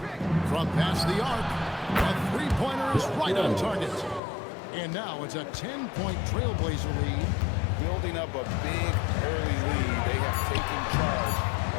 From past the arc. A three Three-pointer is right on target. And now it's a 10-point Trailblazer lead. Building up a big early lead. They have taken charge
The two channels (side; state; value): right; drops out; at 4.2 s